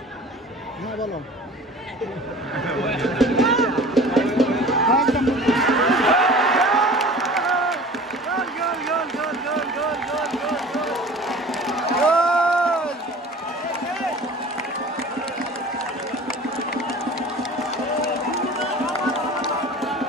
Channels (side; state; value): both; normal; correlation 0.42